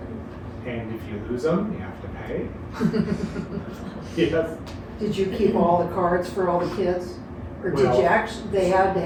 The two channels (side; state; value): both; identical; correlation 1.00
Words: and if you lose them, you have to pay. Yes, Did you keep all the cards for all the kids? Or did Well, you actually, they had to